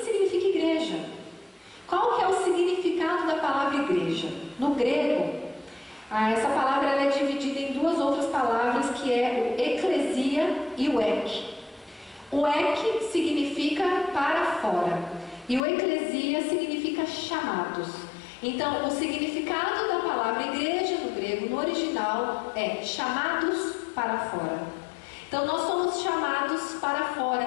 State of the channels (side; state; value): right; drops out; at 15.6 s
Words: igreja. Qual que é o significado da palavra igreja? No grego, essa palavra ela é dividida em duas outras palavras, que é o eclesia e o ek. O ek significa para fora e o eclesia significa chamados. Então, o significado da palavra igreja no grego, no original, é chamados para fora. Então, nós somos chamados para